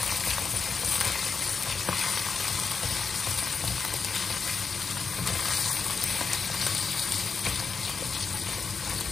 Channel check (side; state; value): right; quieter; 5.3 dB